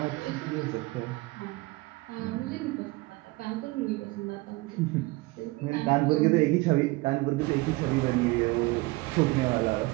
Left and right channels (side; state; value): left; quieter; 22.7 dB